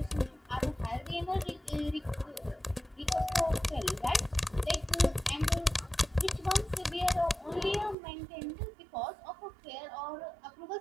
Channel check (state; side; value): drops out; left; at 8.0 s